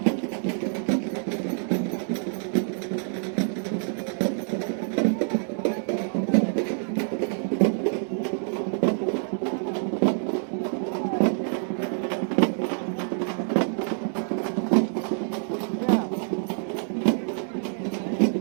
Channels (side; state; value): left; silent; 60 dB below the other